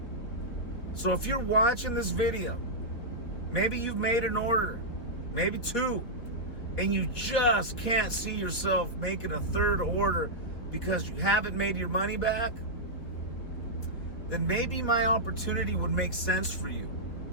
So if you're watching this video, maybe you've made an order, maybe 2, and you just can't see yourself making a 3rd order because you haven't made your money back, then maybe my opportunity would make sense for you.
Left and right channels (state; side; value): late; right; 4.3 ms